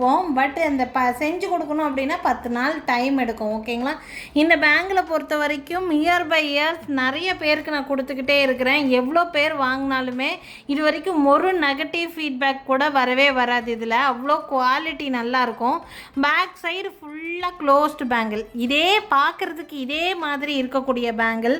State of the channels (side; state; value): both; identical; correlation 1.00